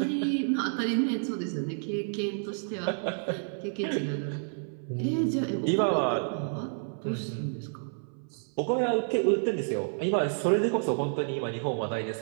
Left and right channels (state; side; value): silent; left; 58 dB below the other